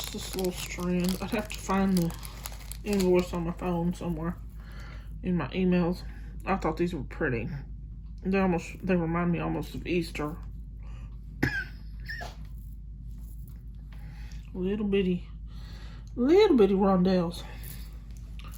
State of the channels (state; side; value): identical; both; correlation 1.00